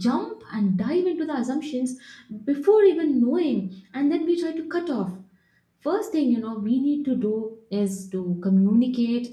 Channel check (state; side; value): identical; both; correlation 1.00